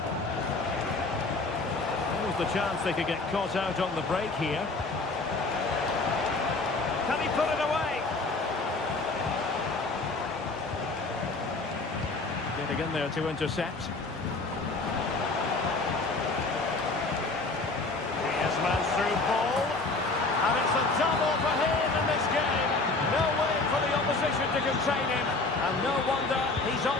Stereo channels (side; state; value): right; quieter; 3.5 dB